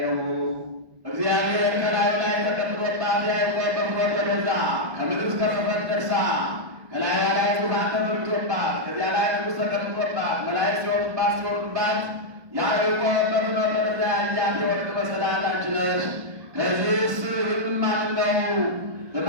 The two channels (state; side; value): late; left; 1.5 ms